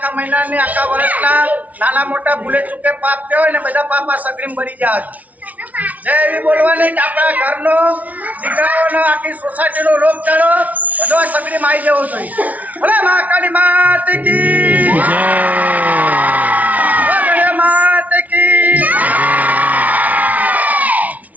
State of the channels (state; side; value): late; left; 0.072 ms